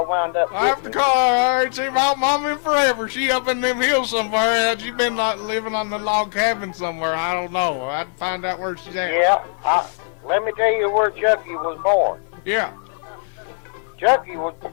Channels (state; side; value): silent; right; 61 dB below the other